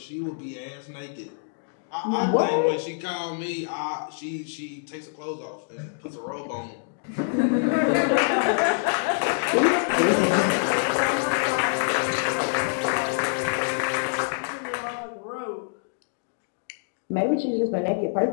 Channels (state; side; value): silent; right; digital silence